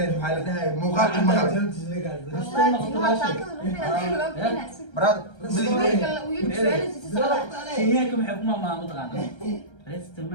maxaa la dhahay muuqaalka maqal brad kenyaanka maxay kuma maama taqaanaa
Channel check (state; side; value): late; right; 1.3 ms